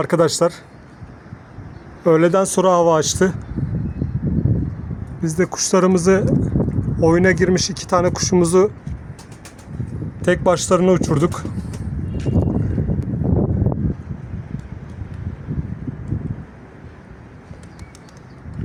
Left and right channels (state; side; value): identical; both; correlation 1.00